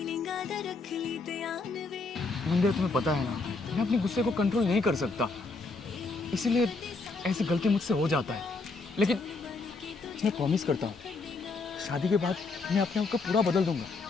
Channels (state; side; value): quieter; right; 3.8 dB